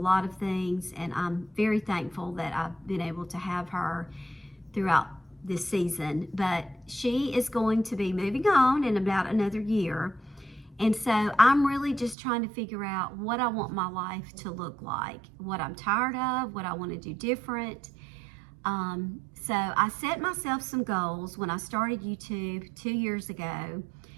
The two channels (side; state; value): left; drops out; at 12.2 s